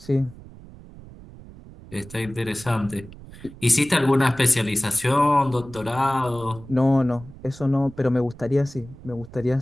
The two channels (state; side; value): noise; right; rumble, 18 dB below the sound